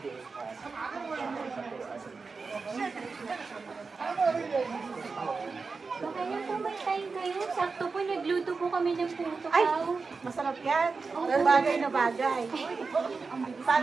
Baka yan po may time kayo. Sakto po, nagluto po kami ng puto Ay, kaw. masarap yan. Bagay na bagay.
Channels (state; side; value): quieter; left; 4.5 dB